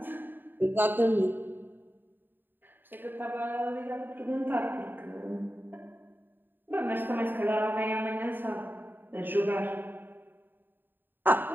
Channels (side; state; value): left; late; 0.093 ms